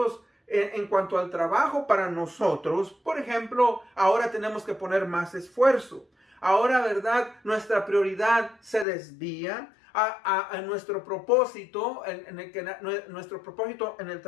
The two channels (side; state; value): right; drops out; at 8.8 s